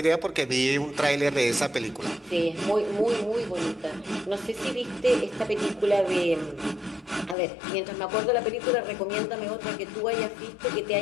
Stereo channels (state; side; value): drops out; right; at 7.4 s